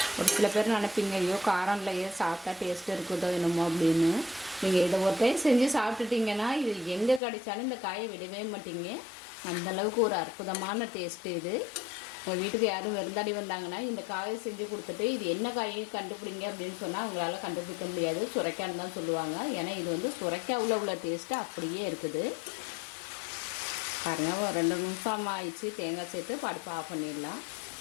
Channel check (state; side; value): drops out; right; at 7.2 s